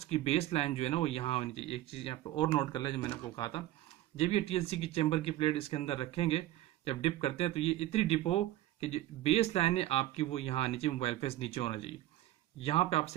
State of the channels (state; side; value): quieter; left; 14.7 dB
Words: की बेस लाइन जो है ना वो यहाँ होनी चाहिए। एक चीज यहाँ पे और नोट कर ले, जो मैंने आपको कहा था, जब ये टीएलसी की चैम्बर की प्लेट इसके अंदर रखेंगे, जब डिप करते हैं तो ये इतनी डिप हो कि जो बेस लाइन है आपकी वो यहाँ नीचे, मोबाइल फेस नीचे होना चाहिए, यहाँ पे आप